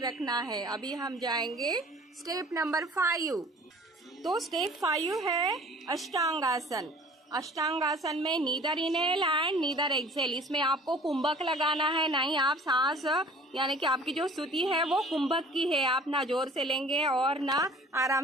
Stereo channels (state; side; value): normal; both; correlation 0.48